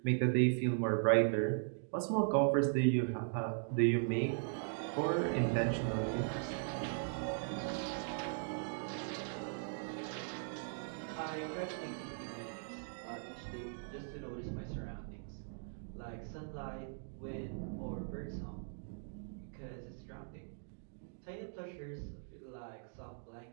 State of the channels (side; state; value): left; silent; digital silence